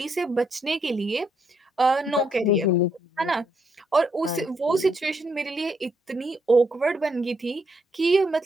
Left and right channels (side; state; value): both; normal; correlation 0.75